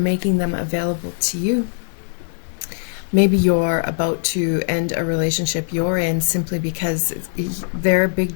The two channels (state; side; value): silent; right; digital silence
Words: them available to you. Maybe you're about to end a relationship you're in simply because they're a big